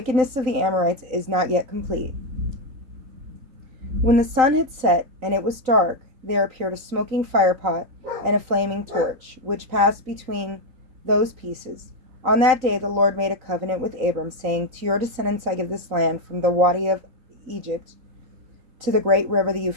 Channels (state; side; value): late; left; 3.9 ms